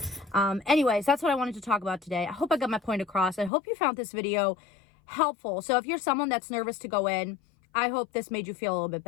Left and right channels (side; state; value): right; drops out; at 3.5 s